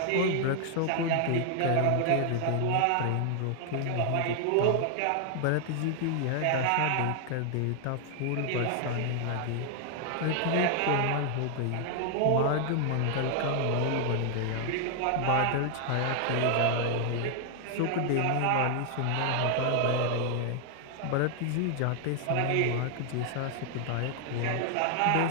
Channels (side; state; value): both; different; correlation 0.00